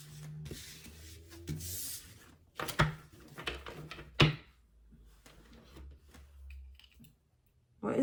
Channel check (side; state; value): both; identical; correlation 1.00